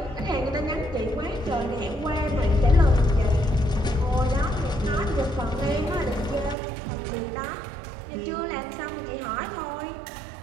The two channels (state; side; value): drops out; left; at 6.6 s